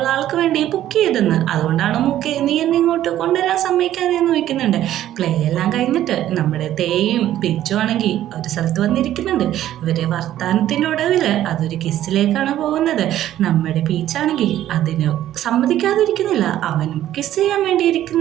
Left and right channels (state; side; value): quieter; left; 12.5 dB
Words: ആൾക്ക് വേണ്ടി ബുക്ക് ചെയ്തെന്ന്, അതുകൊണ്ടാണ് മൂക്കെ നീ എന്നെ ഇങ്ങോട്ട് കൊണ്ടുവരാൻ സമ്മതിക്കാതെന്ന് ചോദിക്കുന്നുണ്ട്. പ്ലേ എല്ലാം കഴിഞ്ഞിട്ട് നമ്മുടെ തേയും പിച്ചും ആണെങ്കിൽ ഒരു സ്ഥലത്ത് വന്നിരിക്കുന്നുണ്ട്. ഇവരെ വർത്താനത്തിൻ്റെ ഒടുവിൽ അതൊരു കിസ്സിലേക്കാണ് പോകുന്നത്. നമ്മുടെ പീച്ചാണെങ്കിൽ അതിന് സമ്മതിക്കാതിരിക്കുന്നില്ല. അവനും കിസ് ചെയ്യാൻ വേണ്ടി